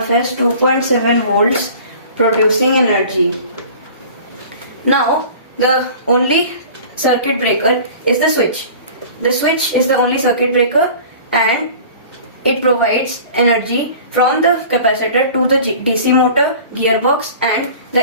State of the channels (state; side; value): inverted; both; correlation -0.43